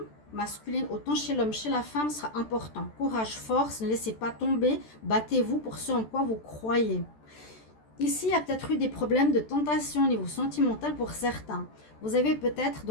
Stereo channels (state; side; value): late; right; 14 ms